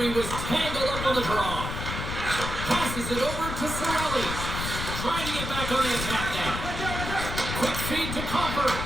was tangled up on the draw. Passes it over to Sorellis. Trying to get back on the attack now. Quick feed to Copper.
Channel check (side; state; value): left; noise; rumble, 5 dB below the sound